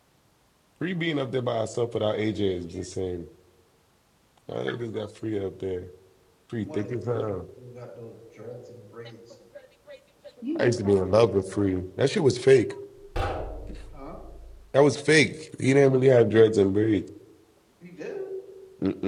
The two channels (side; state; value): both; identical; correlation 1.00